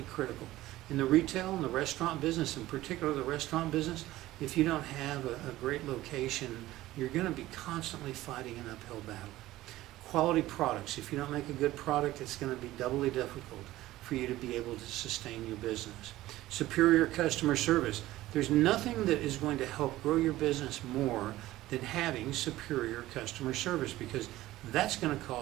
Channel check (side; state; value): left; quieter; 16.2 dB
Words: critical. In the retail and the restaurant business, in particular the restaurant business, if you don't have a great location, you're going to be constantly fighting an uphill battle. Quality products. If you don't make a good product, it's going to be doubly difficult for you to be able to sustain your business. Superior customer service. There's nothing that is going to help grow your business more than having superior customer service, because that's going to